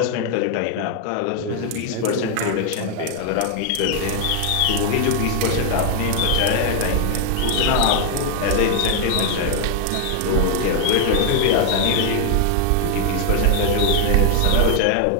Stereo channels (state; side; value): different; both; correlation 0.00